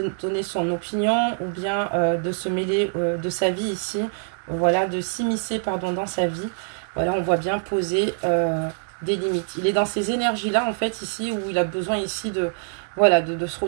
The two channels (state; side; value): silent; left; digital silence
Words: donner son opinion ou bien de se mêler de sa vie ici. Voilà, de s'immiscer, dans sa vie. Voilà, on voit bien poser... des limites. Il est dans ces énergies-là, en fait, ici, où il a besoin ici de se